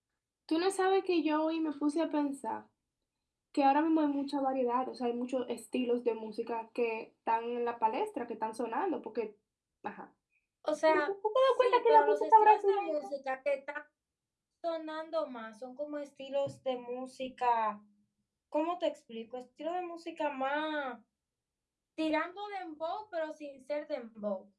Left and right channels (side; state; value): both; identical; correlation 1.00